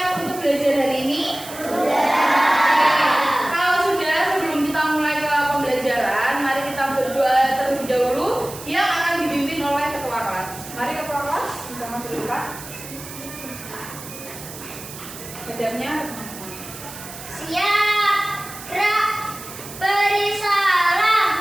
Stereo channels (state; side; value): noise; right; hiss, 13 dB below the sound